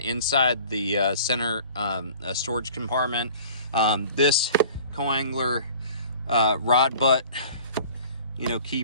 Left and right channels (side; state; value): both; inverted; correlation -0.47